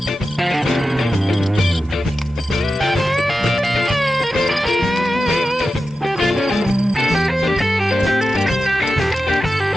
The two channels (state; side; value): normal; both; correlation 0.92